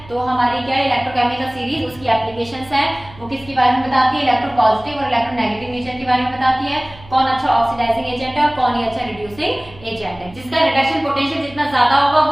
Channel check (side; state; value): right; noise; hum, 21 dB below the sound